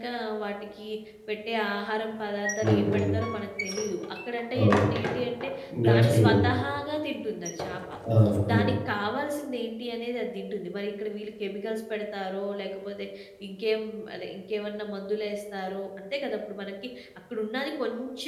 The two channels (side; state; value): both; identical; correlation 1.00